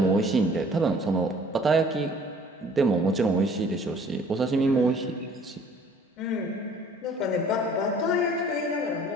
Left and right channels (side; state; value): both; normal; correlation 0.54